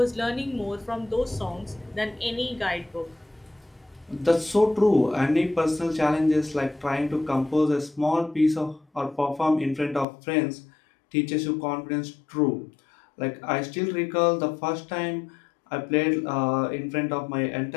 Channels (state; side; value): drops out; right; at 10.1 s